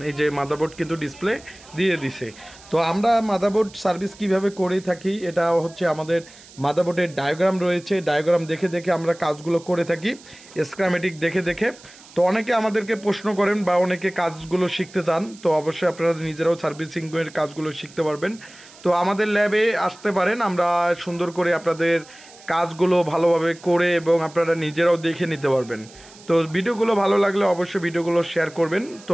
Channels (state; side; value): noise; right; hiss, 22 dB below the sound